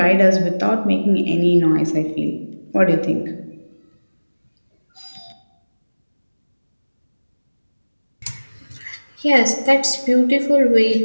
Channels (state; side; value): inverted; both; correlation -1.00